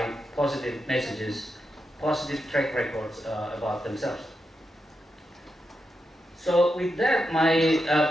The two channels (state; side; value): normal; both; correlation 0.86